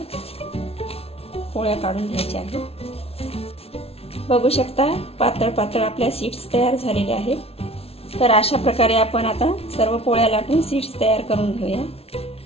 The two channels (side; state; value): right; late; 0.29 ms